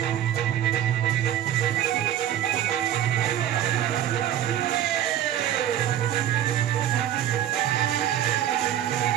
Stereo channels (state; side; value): quieter; left; 11.1 dB